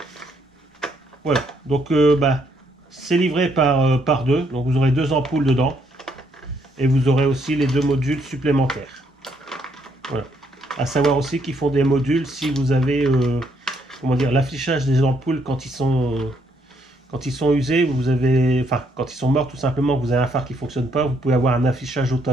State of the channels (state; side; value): normal; both; correlation 0.72